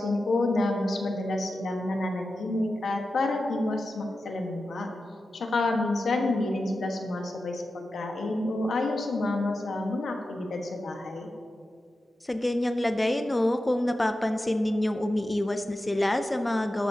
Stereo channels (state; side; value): normal; both; correlation 0.92